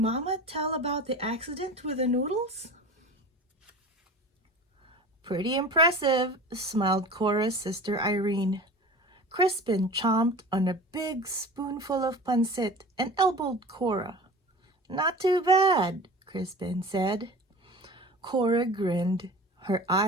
tell about the accident with the noodles? "Pretty impressive," smiled Cora's sister Irene. Crispin chomped on a big spoonful of pancit and elbowed Cora. "Not too bad," Crispin said. Cora grinned. Her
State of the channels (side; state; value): both; normal; correlation 0.37